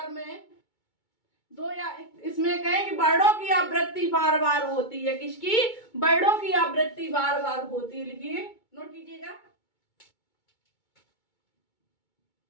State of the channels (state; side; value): late; right; 2.2 ms